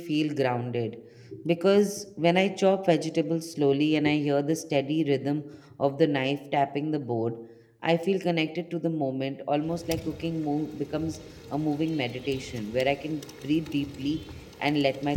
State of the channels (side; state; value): both; identical; correlation 1.00